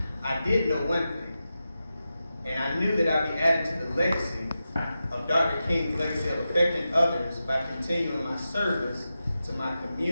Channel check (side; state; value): both; inverted; correlation -0.91